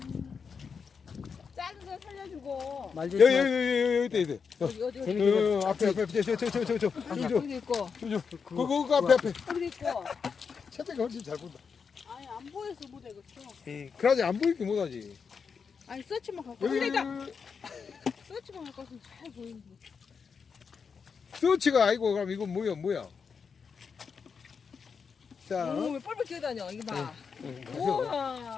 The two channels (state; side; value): quieter; right; 5.9 dB